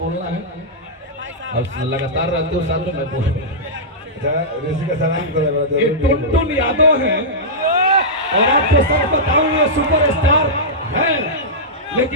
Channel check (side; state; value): both; normal; correlation -0.13